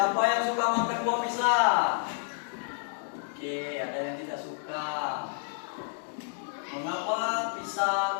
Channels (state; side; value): silent; right; digital silence